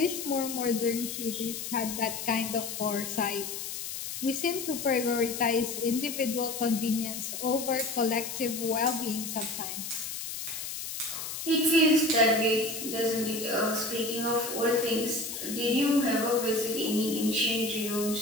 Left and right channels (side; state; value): left; noise; hiss, 6 dB below the sound